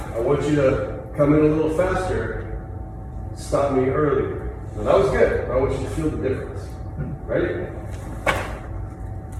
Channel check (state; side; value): identical; both; correlation 1.00